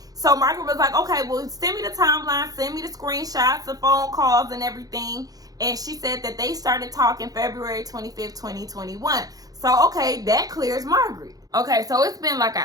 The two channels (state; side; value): late; left; 0.18 ms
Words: So Margaret was like, okay, well, send me the timeline, send me the screenshots, the phone calls, and everything. And she said that they started talking February 25th, 2021. So, okay, that clears Margaret. Okay, so it's been like